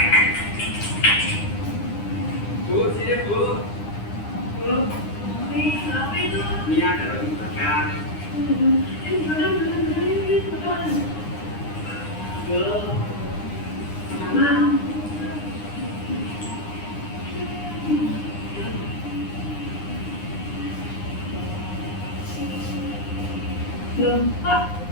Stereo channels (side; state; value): right; late; 9.8 ms